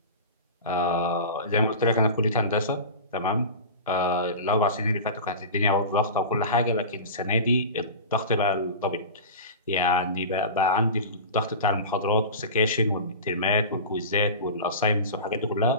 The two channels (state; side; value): inverted; both; correlation -0.31